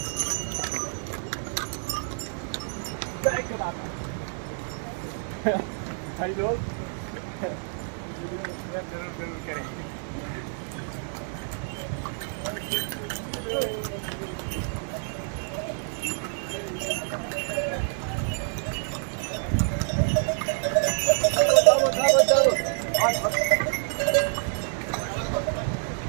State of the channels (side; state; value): left; silent; 60 dB below the other